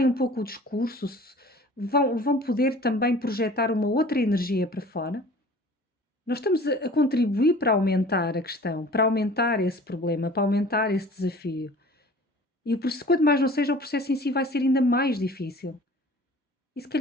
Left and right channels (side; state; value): both; normal; correlation 0.46